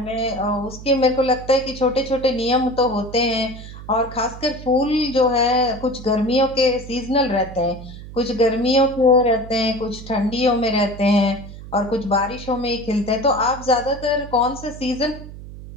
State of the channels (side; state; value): right; noise; hum, 14 dB below the sound